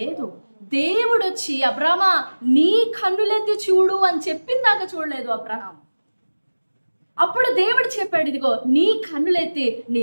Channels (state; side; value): inverted; both; correlation -1.00